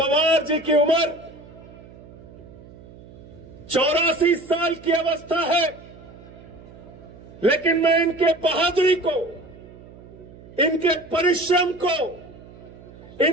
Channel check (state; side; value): noise; right; hum, 20 dB below the sound